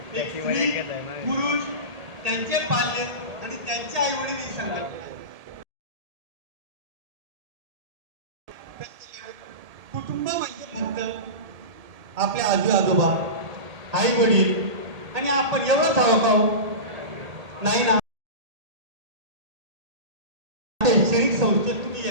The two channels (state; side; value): late; left; 1.8 ms